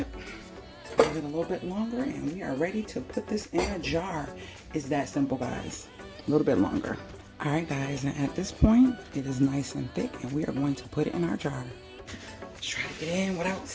Give it a little bit longer and we are ready to put this in a jar. It's that simple, guys. A little bit longer. All right, guys, and at this point it is nice and thick, and we are going to put it in our jar. Let's try to get in without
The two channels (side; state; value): both; identical; correlation 1.00